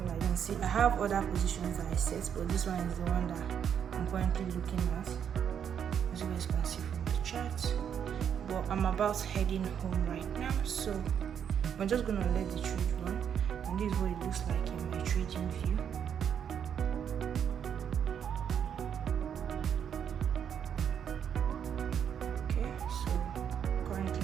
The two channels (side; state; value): left; quieter; 8.3 dB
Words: like you can see. I have other positions that I set, but this one is the one that I'm currently looking at. As you guys can see from the chart. But I'm about heading home right now, so I'm just gonna let the trade run. And this is what it looks like in my trading view. Okay, so